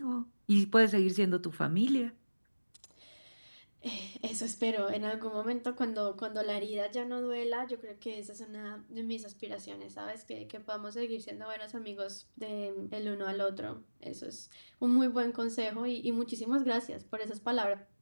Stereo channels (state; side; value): inverted; both; correlation -1.00